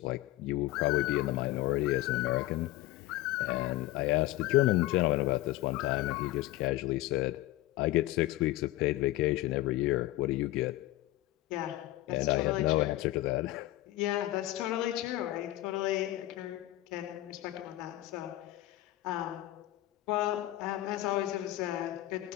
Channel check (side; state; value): right; quieter; 16.6 dB